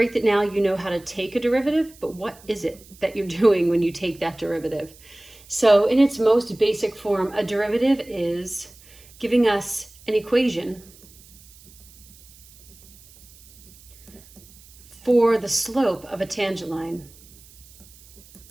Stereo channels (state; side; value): noise; right; hiss, 24 dB below the sound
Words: that now you know how to take a derivative, but what is it that you're doing when you take that derivative? So in its most basic form, a derivative is giving us an equation for the slope of a tangent line,